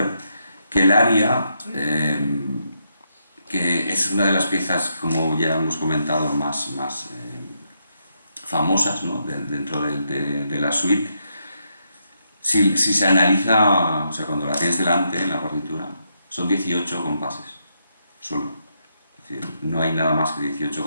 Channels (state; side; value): inverted; both; correlation -0.80